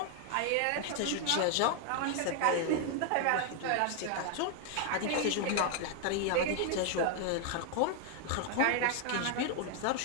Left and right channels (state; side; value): different; both; correlation 0.00